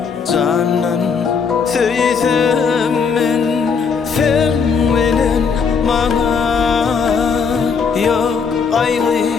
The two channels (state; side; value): quieter; right; 5.8 dB